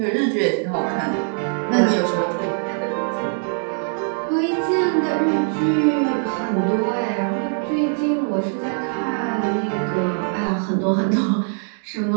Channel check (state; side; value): silent; left; 57 dB below the other